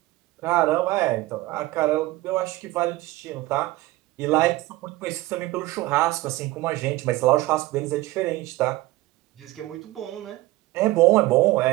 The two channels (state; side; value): quieter; left; 18.5 dB